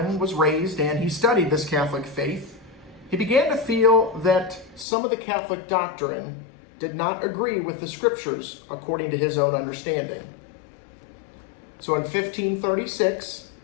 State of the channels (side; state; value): right; drops out; at 4.9 s